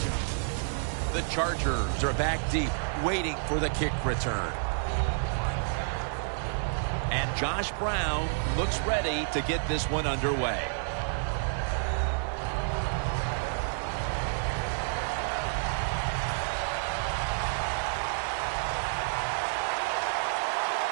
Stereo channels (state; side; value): silent; left; digital silence